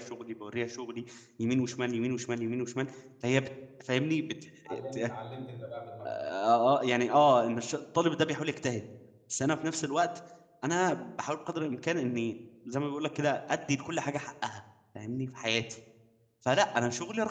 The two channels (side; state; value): both; identical; correlation 1.00